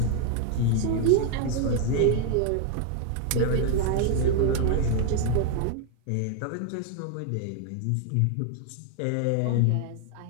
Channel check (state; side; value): different; both; correlation 0.00